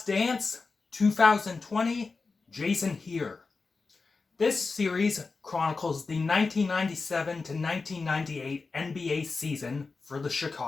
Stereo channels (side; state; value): right; quieter; 4.2 dB